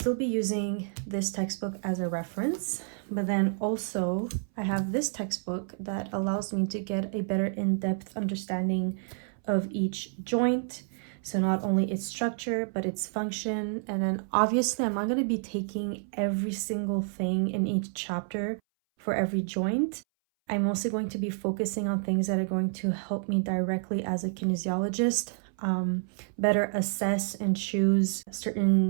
be using this textbook as a reference, but then also I have this textbook that allows me to get a better in-depth understanding of each joint. So not only its structure, but its function. And then obviously I'm not going to be taking every single thing in each chapter for every joint. I'm mostly going to be focusing on things that are going to help me directly as a kinesiologist better assess and choose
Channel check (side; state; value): left; silent; 58 dB below the other